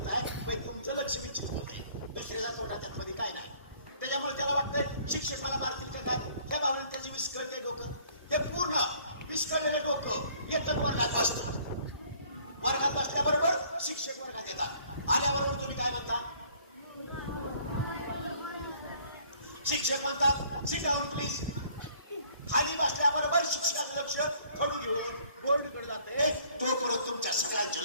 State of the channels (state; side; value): inverted; both; correlation -0.58